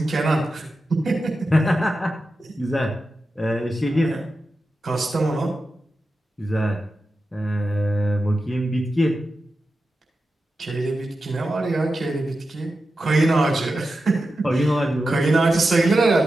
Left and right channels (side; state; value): both; normal; correlation 0.91